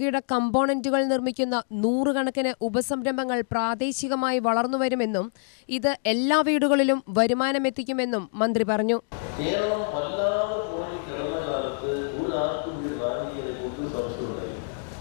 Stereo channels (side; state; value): right; silent; digital silence